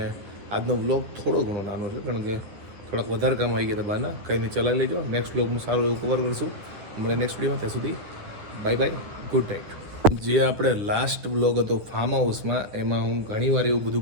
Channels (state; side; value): late; left; 10 ms